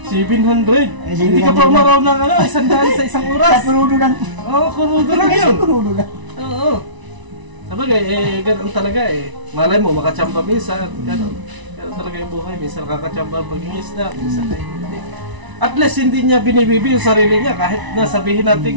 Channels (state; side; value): late; left; 1.0 ms